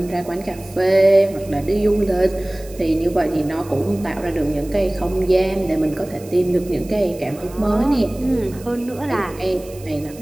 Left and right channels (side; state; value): right; noise; hiss, 21 dB below the sound